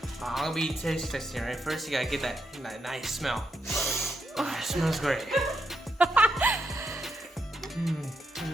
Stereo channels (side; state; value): both; normal; correlation 0.81